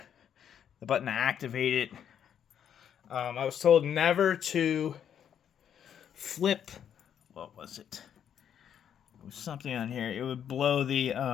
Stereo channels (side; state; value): right; quieter; 8.9 dB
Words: The button to activate it. I was told never to flip. What was it? It was something on here. It would blow the